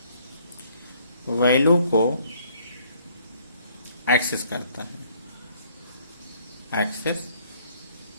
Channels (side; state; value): both; inverted; correlation -0.63